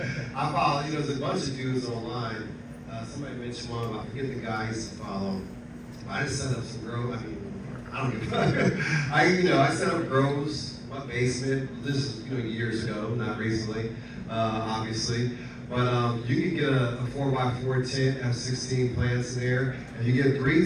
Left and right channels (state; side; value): identical; both; correlation 1.00